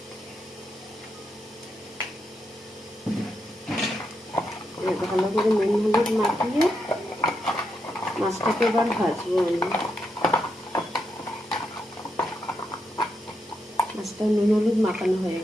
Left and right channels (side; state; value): both; normal; correlation 0.83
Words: ভালো করে নুন হলুদ মাখিয়ে মাছটাকে এবার ভাজবো আমি। মাছটা নুন হলুদ মাখানো হয়ে